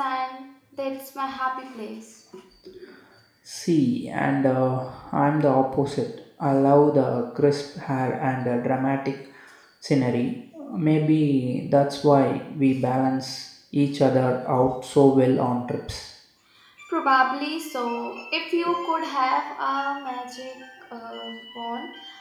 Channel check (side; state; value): both; identical; correlation 1.00